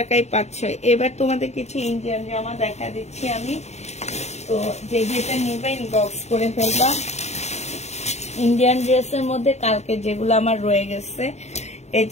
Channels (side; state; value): right; late; 0.32 ms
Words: পাচ্ছ। এবার তোমাদের কিছু ইন্ডিয়ান জামা দেখা দিচ্ছি আমি। তো যে যেটা নিবে ইনবক্স করে ফেলবা। ইন্ডিয়ান ড্রেসের মধ্যে কালকে যেগুলো আমার রয়ে গেছে, এই